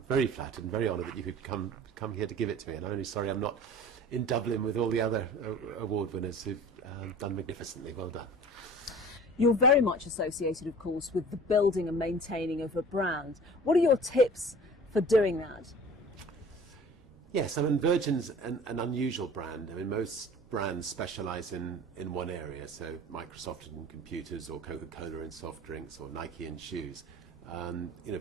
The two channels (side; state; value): both; normal; correlation 0.43